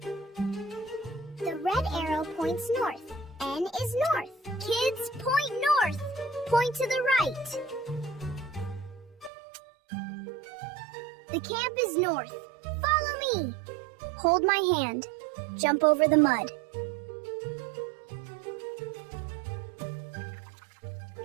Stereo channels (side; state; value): left; drops out; at 9.3 s